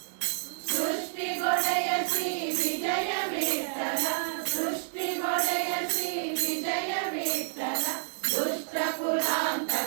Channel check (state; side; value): silent; left; digital silence